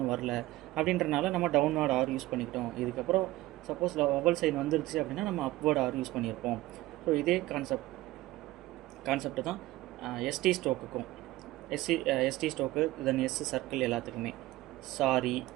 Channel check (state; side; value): quieter; left; 17.5 dB